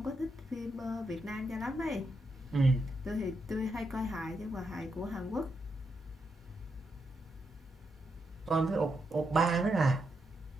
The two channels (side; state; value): both; normal; correlation 0.83